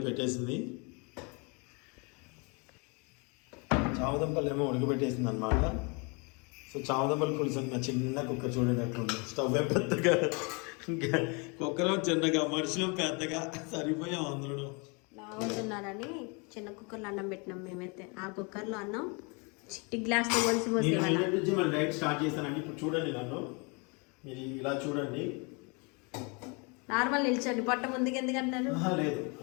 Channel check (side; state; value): right; quieter; 31.6 dB